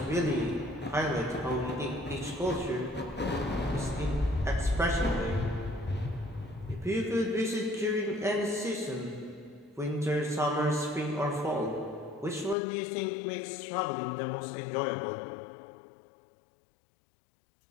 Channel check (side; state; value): right; drops out; at 12.6 s